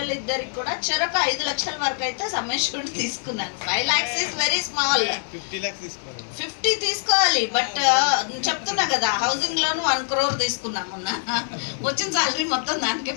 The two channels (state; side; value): silent; right; 63 dB below the other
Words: కూడా చెరొక 5 లక్షల వరకు అయితే సమ్మేషన్ తీసుకున్నాను. 5 lakhs ఇస్ వెరీ స్మాల్. 50 తీసుకోవాలి. బట్ చెప్తున్నా కదా, హౌసింగ్ లోన్ 1 crore తీసుకున్నాం మొన్న. వచ్చిన సాలరీ మొత్తం దానికే